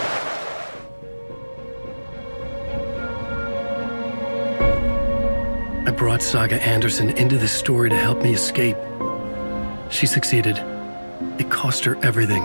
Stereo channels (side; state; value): both; inverted; correlation -1.00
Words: I brought Saga Anderson into this story to help me escape. She succeeded. It cost her everything.